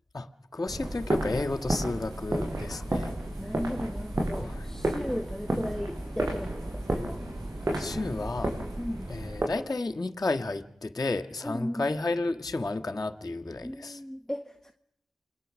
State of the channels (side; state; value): both; normal; correlation 0.92